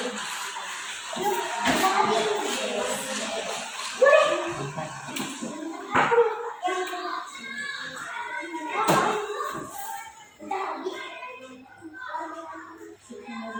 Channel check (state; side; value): identical; both; correlation 1.00